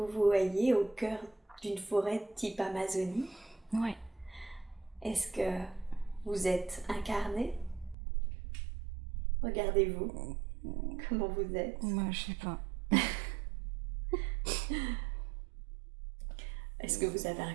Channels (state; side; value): drops out; left; at 8.0 s